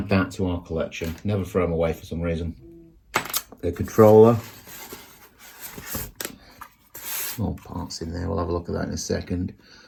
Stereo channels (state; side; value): identical; both; correlation 1.00